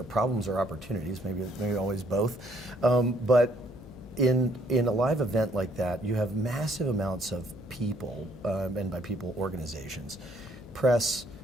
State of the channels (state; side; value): noise; left; hum, 18 dB below the sound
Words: problems or opportunities, maybe always both, but in a live event like that, you have massive amounts of people, and by people, organizations, press,